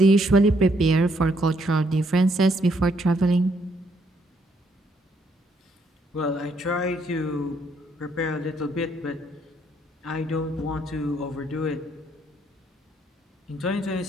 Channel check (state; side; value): normal; both; correlation 0.71